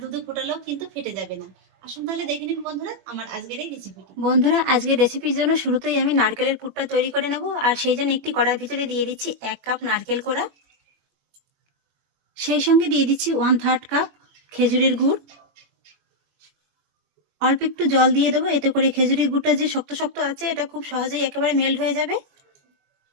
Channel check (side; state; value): left; late; 21 ms